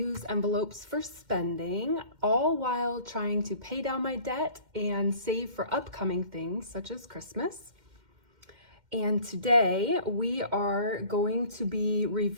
envelopes for spending, all while trying to pay down my debt and save for upcoming things such as Christmas. And today we are going to be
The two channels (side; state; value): left; late; 2.1 ms